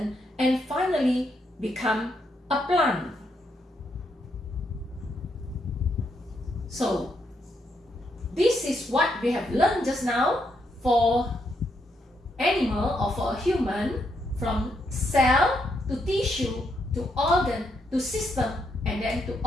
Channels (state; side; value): normal; both; correlation 0.78